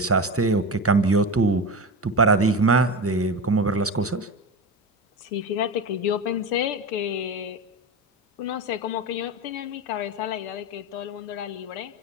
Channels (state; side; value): normal; both; correlation 0.23